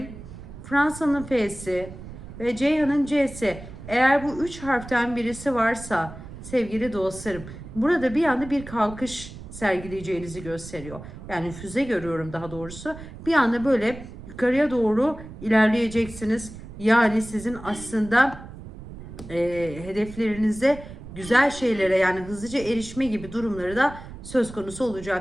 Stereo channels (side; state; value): right; noise; rumble, 14 dB below the sound